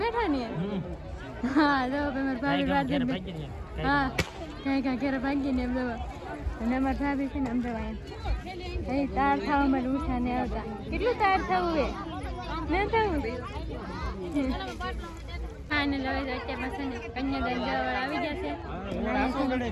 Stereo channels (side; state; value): both; identical; correlation 1.00